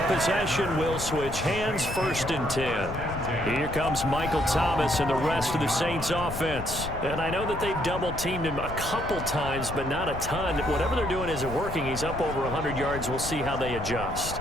possession will switch hands, 1st and 10. Here comes Michael Thomas and the rest of the Saints offense. And I know that they've double-teamed him a couple times, but not a ton. Whatever they're doing isn't working. He's up over 100 yards. We'll see how they adjust.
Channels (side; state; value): left; noise; rumble, 8 dB below the sound